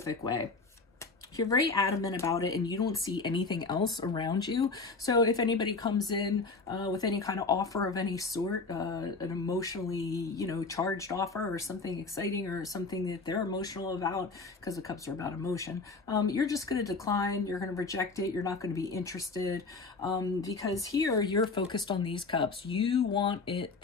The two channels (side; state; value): right; quieter; 4.0 dB